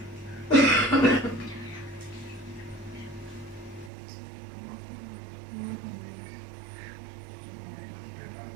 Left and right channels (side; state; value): left; drops out; at 3.9 s